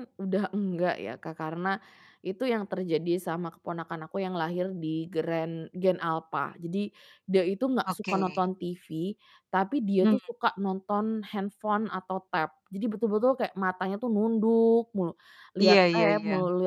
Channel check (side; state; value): both; identical; correlation 1.00